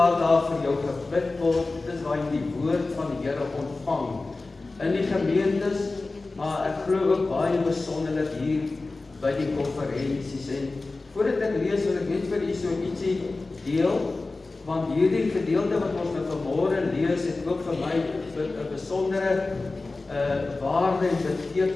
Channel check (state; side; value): quieter; right; 3.4 dB